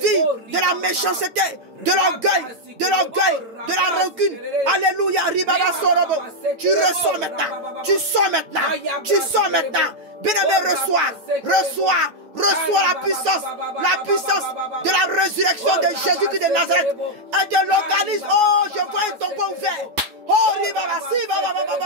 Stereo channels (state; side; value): late; left; 9.5 ms